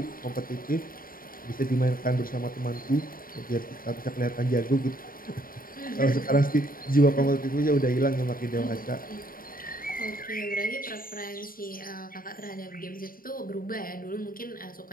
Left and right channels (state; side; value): late; right; 0.41 ms